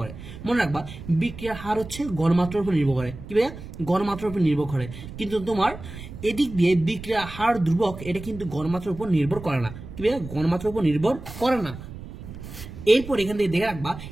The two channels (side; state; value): right; noise; rumble, 13 dB below the sound